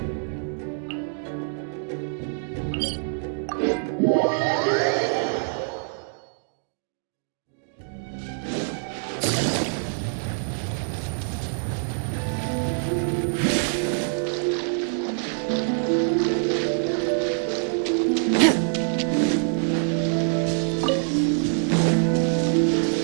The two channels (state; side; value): silent; left; digital silence